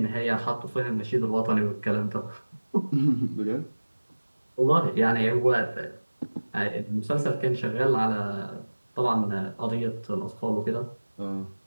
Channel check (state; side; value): inverted; both; correlation -1.00